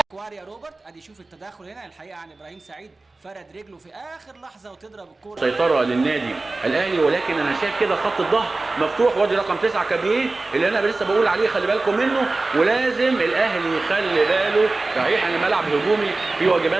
كواريا روبرت ادي شوف التداخل هنا الحقيقه عن ابراهيم سعيد، فرد رجله في اخر لحظه وتضرب الكوره. سيطره للنادي الاهلي، ولكن انا شايف كده خط الظهر مفتوح، وادي رقم 9 كابيه اللي انا لسه بقول عليه خلي بالكم منه، ولازم الاهلي يخلي باله. صحيح ان الملعب هجومي فيه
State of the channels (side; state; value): left; quieter; 3.3 dB